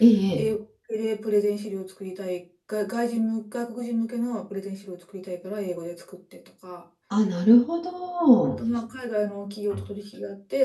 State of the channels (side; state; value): both; identical; correlation 1.00